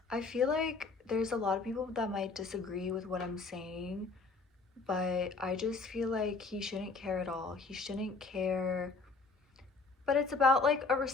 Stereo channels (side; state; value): right; quieter; 4.1 dB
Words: I feel like there's a lot of people that might disagree with what I'm saying, but I just feel like he shouldn't care at all. He shouldn't care. But it's about like a